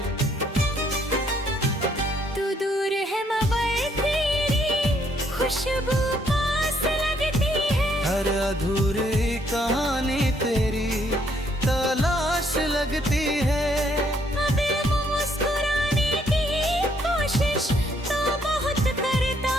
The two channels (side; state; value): both; normal; correlation 0.69